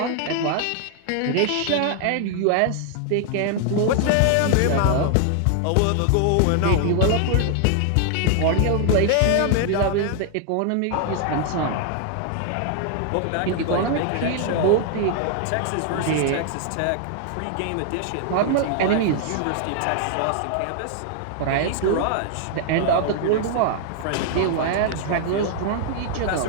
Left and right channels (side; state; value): both; different; correlation 0.00